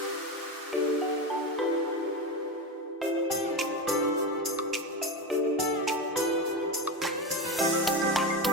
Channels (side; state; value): both; normal; correlation 0.19